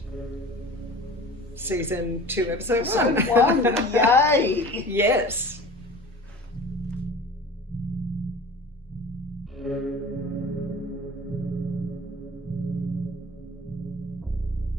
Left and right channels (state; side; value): normal; both; correlation 0.40